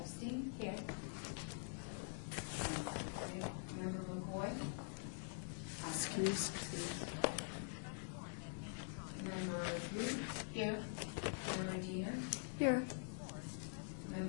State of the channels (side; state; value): right; silent; digital silence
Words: Here. Member McCoy. Excuse. Member Blue. Here. Member Diener. Here.